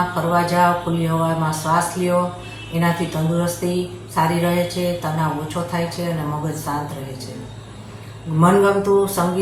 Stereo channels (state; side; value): identical; both; correlation 1.00